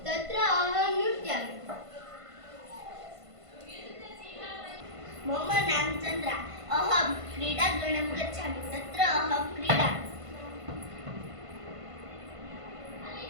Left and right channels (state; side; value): late; left; 1.5 ms